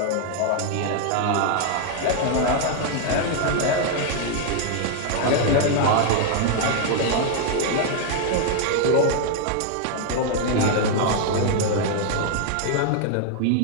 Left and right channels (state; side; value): different; both; correlation 0.00